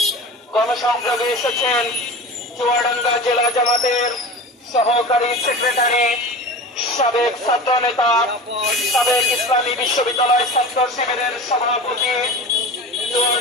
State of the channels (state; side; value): normal; both; correlation 0.33